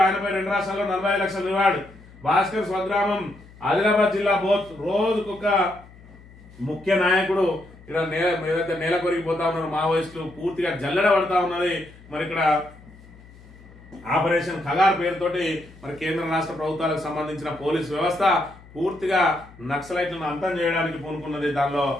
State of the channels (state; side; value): noise; left; hum, 22 dB below the sound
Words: ఆయనపై 2 రాష్ట్రాల్లో 45 లక్షల రివార్డు. భాస్కర్ స్వగ్రామం ఆదిలాబాద్ జిల్లా బోత్, రోజుకొక ముఖ్య నాయకుడు ఇక్కడ ఏదైతే నేల కొరిగిపోతా ఉన్నారు మావోయిస్టులు, పూర్తిగా జల్లెడ పడతా ఉన్నది. మరి ఇక్కడ ఆపరేషన్ ఖగార్ పేరుతోటి మరి కేంద్ర రాష్ట్ర ప్రభుత్వాలకు సంబంధించిన పోలీస్ వ్యవస్థ పూర్తిగా నక్సలైట్లను అంతం చేయడానికి పూనుకున్నది. దానిలో